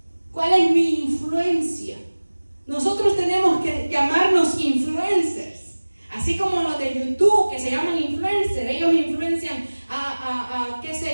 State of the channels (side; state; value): both; inverted; correlation -1.00